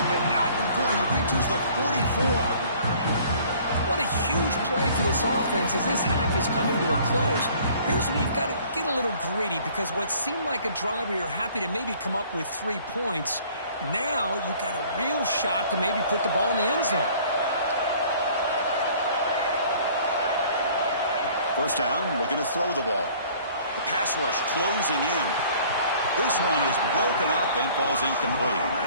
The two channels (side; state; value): both; inverted; correlation -0.54